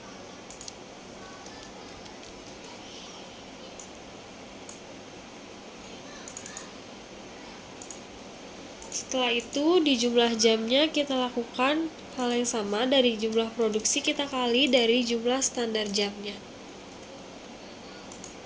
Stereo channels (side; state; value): both; identical; correlation 1.00